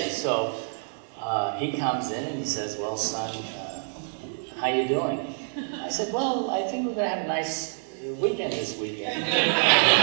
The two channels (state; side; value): silent; left; digital silence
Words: So he comes in and he says, "Well, son, how you doing?" I said, "Well, I think we're going to have a nice weekend this weekend."